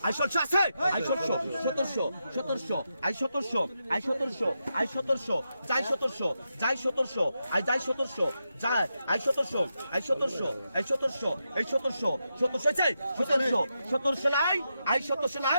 I 1600 আছে আই 1700 আই 1700 আই 1700 আই 1700 যাই 1700 যাই 1700 আই যাই 1700 যাই আই 1700 আই 1700 আই 1700 এই 1700 চাই 1700 নাই আই 1700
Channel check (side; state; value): both; inverted; correlation -0.86